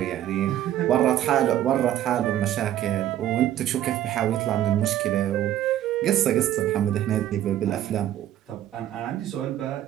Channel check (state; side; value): quieter; left; 12.1 dB